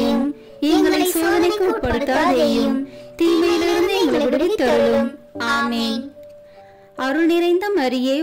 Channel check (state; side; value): identical; both; correlation 1.00